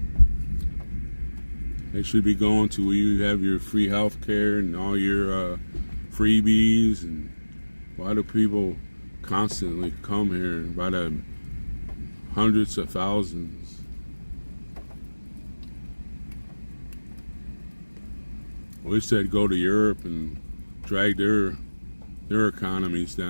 They should be going to where you have your free health care and all your freebies. And why do people constantly come here by the hundreds of thousands? I wish they'd go to Europe and drag their economies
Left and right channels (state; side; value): inverted; both; correlation -1.00